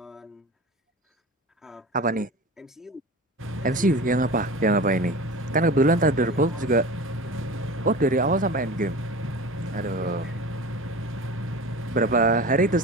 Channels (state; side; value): normal; both; correlation 0.33